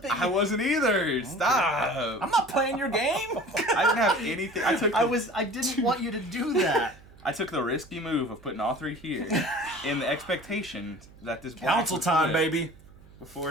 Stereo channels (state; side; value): noise; right; hum, 23 dB below the sound